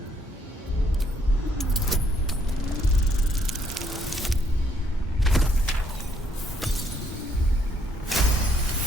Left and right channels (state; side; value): normal; both; correlation 0.70